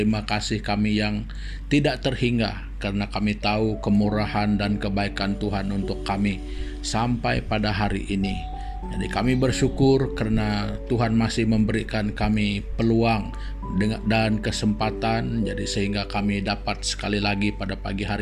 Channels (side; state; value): both; identical; correlation 1.00